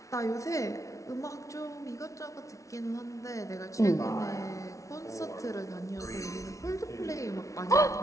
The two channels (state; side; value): late; right; 0.15 ms